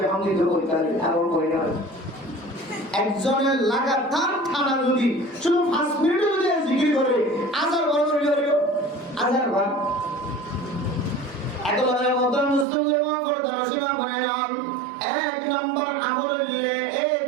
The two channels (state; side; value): drops out; left; at 12.7 s